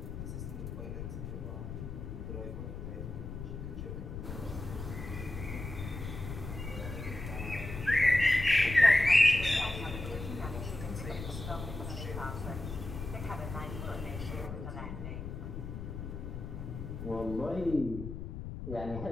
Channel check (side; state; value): left; noise; rumble, 7 dB below the sound